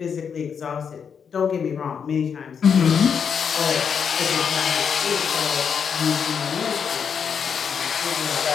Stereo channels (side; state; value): right; quieter; 6.9 dB